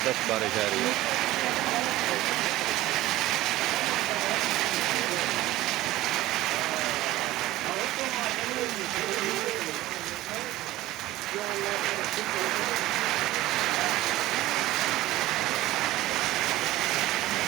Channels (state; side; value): quieter; left; 16.6 dB